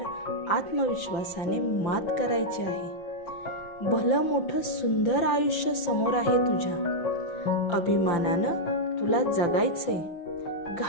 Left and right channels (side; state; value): right; late; 5.9 ms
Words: आत्मविश्वासाने मात करायची आहे. भलं मोठं सुंदर आयुष्य समोर आहे तुझ्या. अभिमानानं तुला जगायचंय.